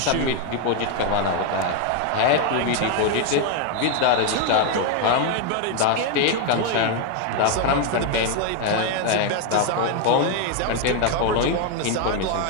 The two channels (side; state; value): both; different; correlation 0.01